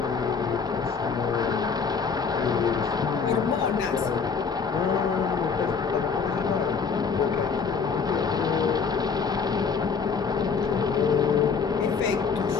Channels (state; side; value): quieter; right; 5.6 dB